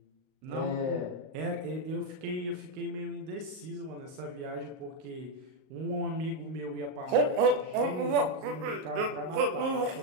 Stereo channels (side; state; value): left; late; 38 ms